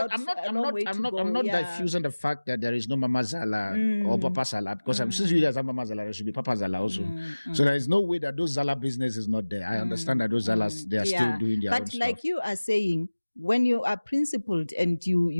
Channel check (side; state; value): both; inverted; correlation -1.00